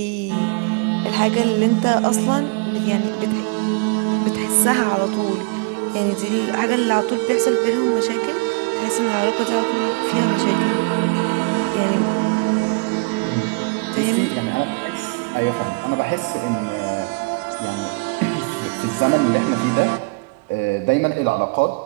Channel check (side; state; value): left; quieter; 31.2 dB